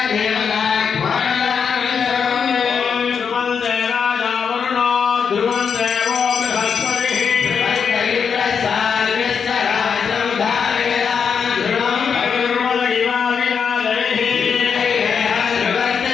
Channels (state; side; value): quieter; right; 6.5 dB